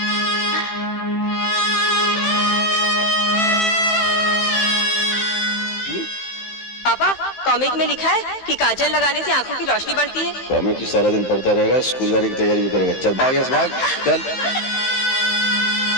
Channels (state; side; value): late; right; 15 ms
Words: पापा, कॉमिक में लिखा है कि काजल लगाने से आंखों की रोशनी बढ़ती है। कॉमिक की सारा दिन पढ़ता रहेगा, स्कूल जाने की तैयारी भी करेगा। चल भाग यहाँ से, भाग चल।